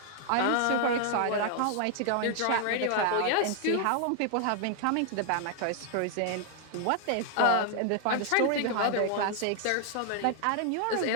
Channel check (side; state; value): both; different; correlation 0.00